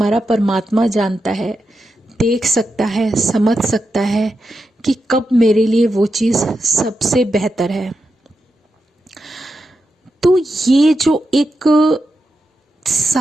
परमात्मा जानता है, देख सकता है, समझ सकता है कि कब मेरे लिए वो चीज़ सबसे बेहतर है। तो ये जो एक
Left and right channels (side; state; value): both; normal; correlation 0.88